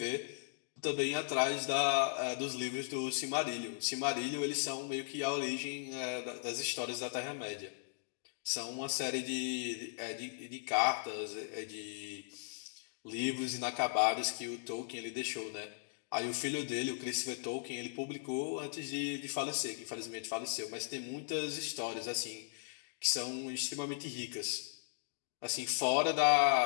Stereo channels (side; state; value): right; silent; digital silence